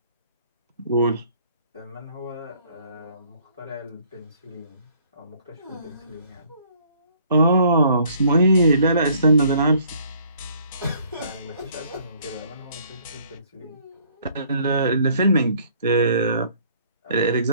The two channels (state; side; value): inverted; both; correlation -0.60